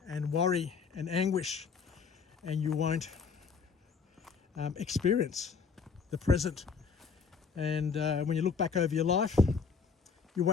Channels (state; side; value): quieter; right; 5.6 dB